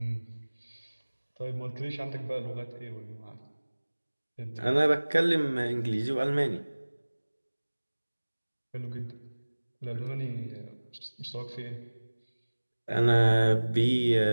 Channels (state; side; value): inverted; both; correlation -1.00